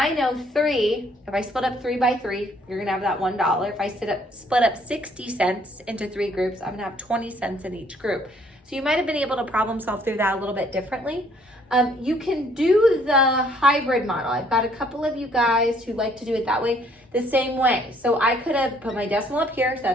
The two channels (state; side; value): normal; both; correlation 0.63